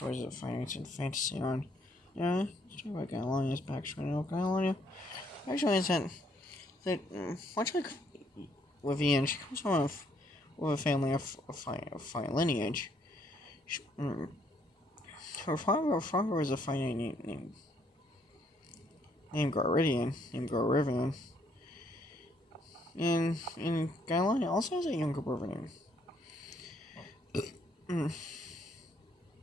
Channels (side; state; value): both; normal; correlation 0.69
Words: of fainknights and fntasyion. Yeah, let's talk about Gailania's backstory now. Gailonia actually is that much like with Ian, she comes from with a family of fine lineage. Her father was a fine knight named Garrivian, and Gailania also has a younger brother